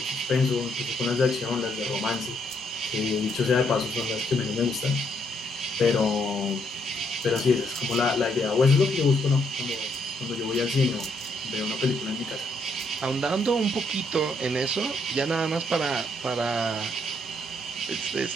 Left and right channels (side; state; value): both; normal; correlation 0.73